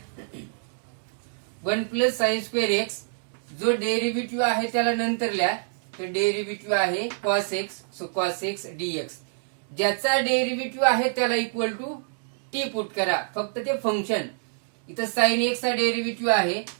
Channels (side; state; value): left; silent; digital silence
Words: 1 plus sin² x. जो डेरिव्हेटिव्ह आहे त्याला नंतर लिहा. तर डेरिव्हेटिव्ह आहे cos x. So cos x dx. ज्याचा डेरिव्हेटिव्ह आहे त्याला इक्वल टू टी पुट करा. फक्त ते फंक्शन, इथं साइन एक्स चा डेरिव्हेटिव्ह आहे,